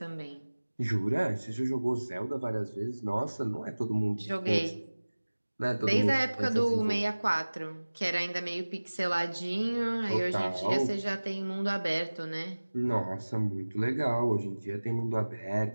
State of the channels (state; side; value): inverted; both; correlation -1.00